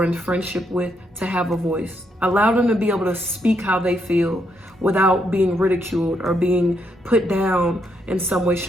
in friendship with to have a voice. Allow them to be able to speak how they feel without being ridiculed or being put down in some way,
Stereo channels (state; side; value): normal; both; correlation 0.77